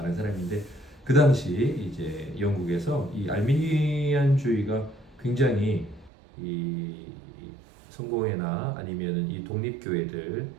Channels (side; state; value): left; drops out; at 6.1 s